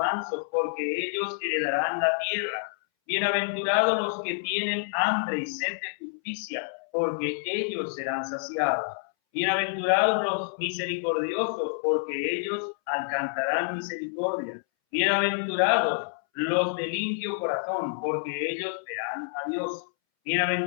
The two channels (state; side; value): silent; right; 60 dB below the other